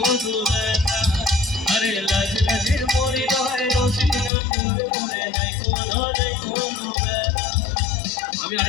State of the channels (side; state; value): right; drops out; at 4.3 s